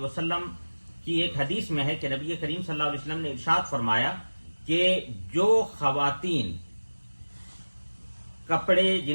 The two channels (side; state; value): both; inverted; correlation -1.00